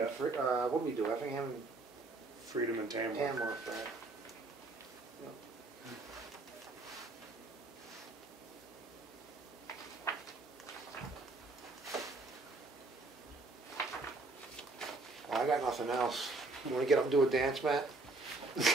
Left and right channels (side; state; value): left; quieter; 3.3 dB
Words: Yeah. what do we do? Effingham and Freedom and Tamworth. Tamworth, right? Yep. Well, I got nothing else. You want to get up and do a dance, Matt?